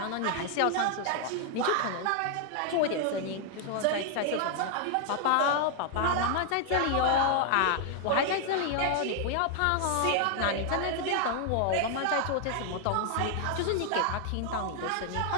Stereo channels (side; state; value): both; different; correlation 0.00